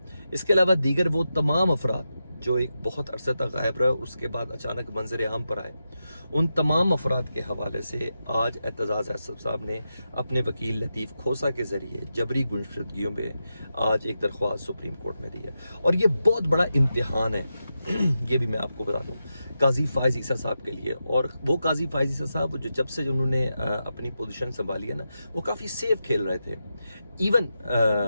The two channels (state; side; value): inverted; both; correlation -0.89